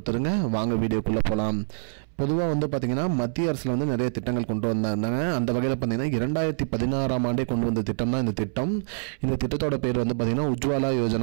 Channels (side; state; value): left; silent; 61 dB below the other